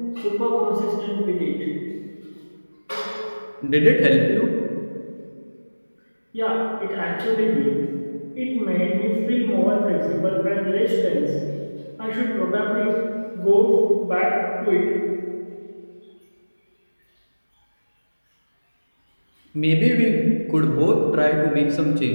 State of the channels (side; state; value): both; inverted; correlation -1.00